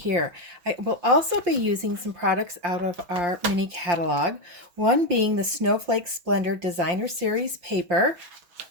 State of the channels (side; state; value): left; late; 5.7 ms